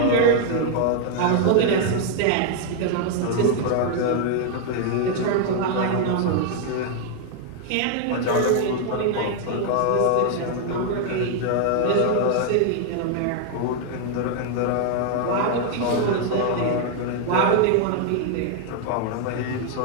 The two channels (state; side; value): different; both; correlation 0.00